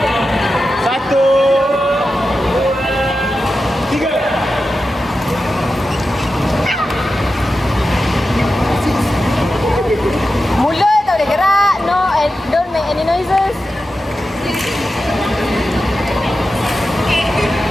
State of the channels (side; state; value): both; normal; correlation 0.91